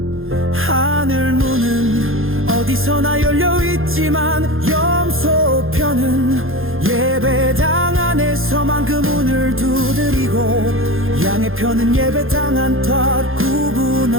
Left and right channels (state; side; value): late; left; 0.60 ms